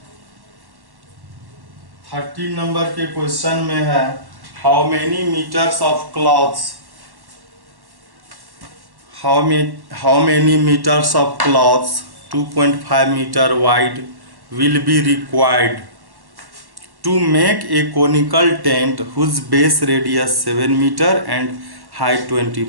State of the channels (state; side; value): late; left; 1.1 ms